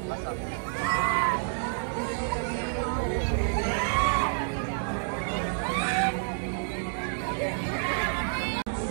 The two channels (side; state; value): left; silent; digital silence